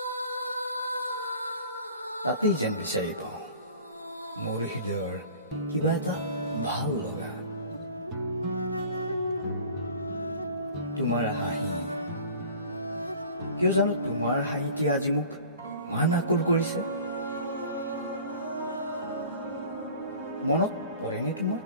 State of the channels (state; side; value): inverted; both; correlation -0.44